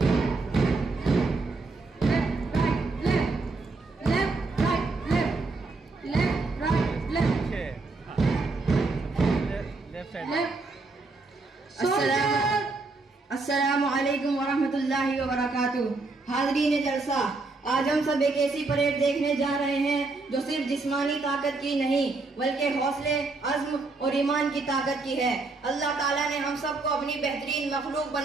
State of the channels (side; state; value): left; quieter; 3.6 dB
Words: अस्सलामु अलैकुम वरहमतुल्लाहि वबरकातुहू। हाज़रीन जलसा, आज हम सब एक ऐसी परेड देखने जा रहे हैं जो सिर्फ जिस्मानी ताकत की नहीं बल्कि हौसले, अज़्म और ईमान की ताकत की है। अल्लाह ताला ने हम सबको अपनी बेहतरीन मखलूक